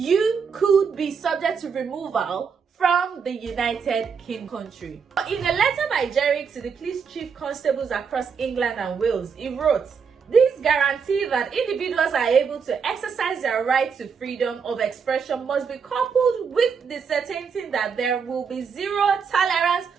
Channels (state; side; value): quieter; left; 6.1 dB